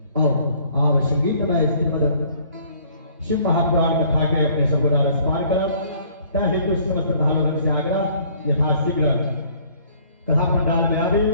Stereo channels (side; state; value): both; inverted; correlation -0.58